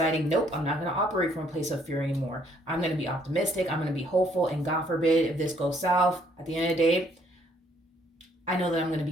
nope, I'm not going to operate from a place of fear anymore. I'm going to be optimistic. I'm going to be hopeful. And God forbid, if this goes south, at the end of the day, I know that I'm going to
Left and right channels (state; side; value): normal; both; correlation 0.65